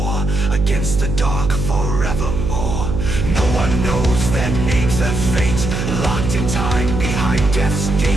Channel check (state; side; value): noise; right; hum, 3 dB below the sound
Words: against the dark forevermore. No one knows their names, their fate, locked in time behind death's